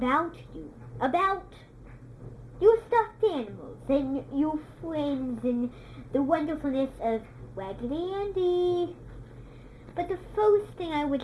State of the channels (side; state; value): both; identical; correlation 1.00